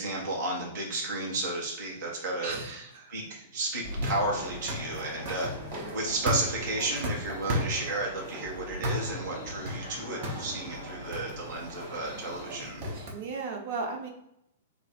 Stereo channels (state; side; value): inverted; both; correlation -0.32